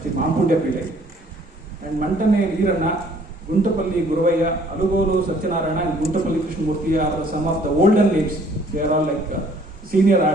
Sri Mampundya Pillai, and Mantane Veeranna, Guntapalli Guruvaya, Alugolu Satyanarayana, and Guntapalli Krishnamurti are some of the olden names. They are all like senior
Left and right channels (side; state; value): both; normal; correlation 0.59